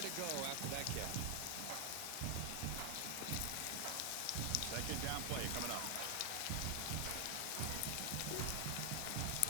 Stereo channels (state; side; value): different; both; correlation 0.00